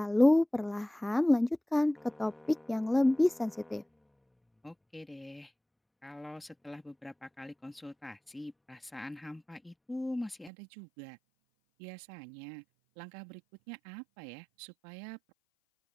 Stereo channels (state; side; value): drops out; left; at 10.5 s